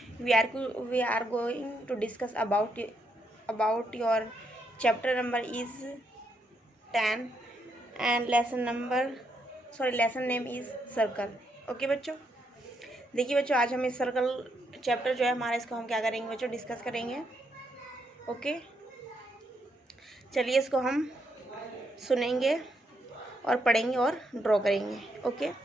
We are going to discuss about your chapter number is 10 and lesson name is circle. Okay बच्चों, देखिए बच्चों, आज हम इस सर्कल चैप्टर जो है हमारा, इसको हम क्या करेंगे बच्चों, डिस्कस करेंगे। ओके, चलिए इसको हम सुनेंगे और पढ़ेंगे और ड्रॉ करेंगे। ओके,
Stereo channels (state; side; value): normal; both; correlation 0.77